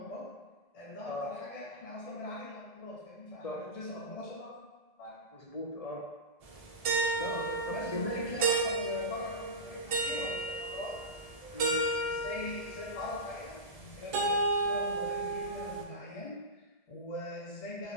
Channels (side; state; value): right; late; 1.7 ms